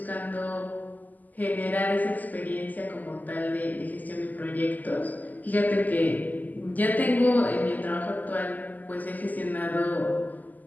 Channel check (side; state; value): right; late; 0.082 ms